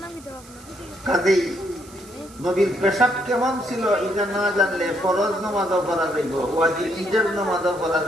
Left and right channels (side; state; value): right; noise; hiss, 22 dB below the sound